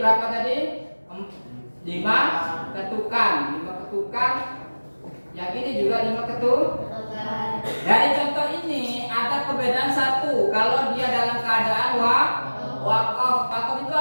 tadi? 5 ketukan. 5 ketukan. Yang ini juga 5 ketukan. Dari contoh ini ada perbedaan satu. Kalau dia dalam keadaan keadaan wakaf. Wakaf itu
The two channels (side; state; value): both; inverted; correlation -1.00